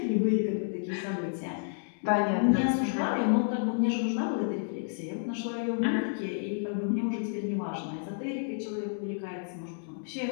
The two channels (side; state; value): right; silent; digital silence